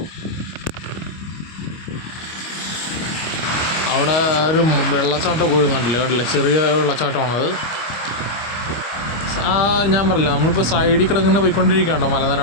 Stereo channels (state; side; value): late; right; 25 ms